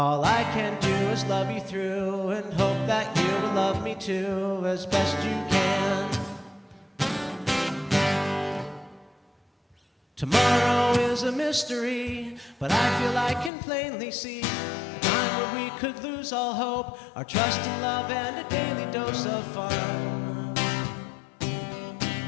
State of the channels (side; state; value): right; drops out; at 13.5 s